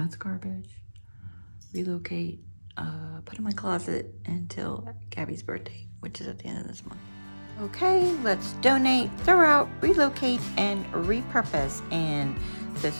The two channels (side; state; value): both; inverted; correlation -1.00